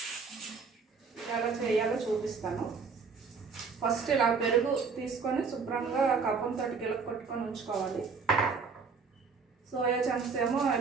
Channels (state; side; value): quieter; left; 5.2 dB